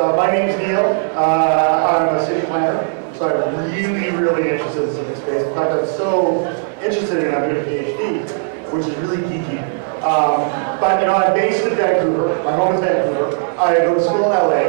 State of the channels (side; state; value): left; silent; digital silence